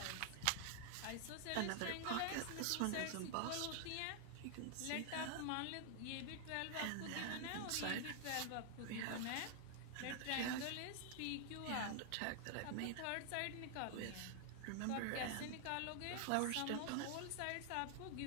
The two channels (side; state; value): both; different; correlation 0.00